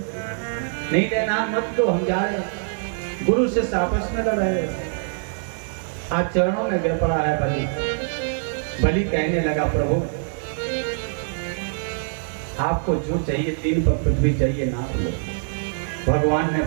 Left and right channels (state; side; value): silent; left; digital silence